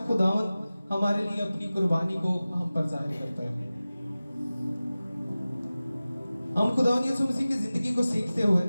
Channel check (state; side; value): inverted; both; correlation -0.97